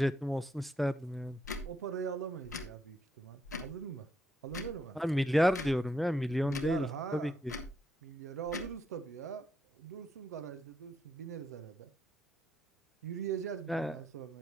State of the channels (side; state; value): both; normal; correlation 0.77